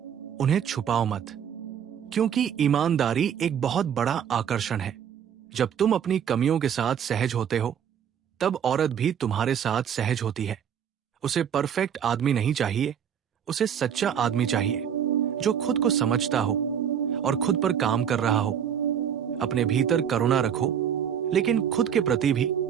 उन्हें छुपाओ मत, क्योंकि ईमानदारी एक बहुत बड़ा आकर्षण है। जब तुम अपनी कमियों के साथ सहज होते हो, तब औरत भी तुम्हारे साथ सहज होती है। उसे परफेक्ट आदमी नहीं चाहिए, उसे सच्चा आदमी चाहिए जो खुद को समझता हो और खुद पर काम कर रहा हो। अपने भीतर करुणा रखो, लेकिन खुद के प्रति भी।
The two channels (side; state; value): left; quieter; 8.5 dB